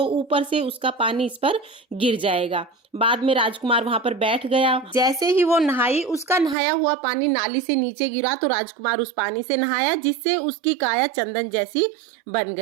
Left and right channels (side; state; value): left; drops out; at 6.6 s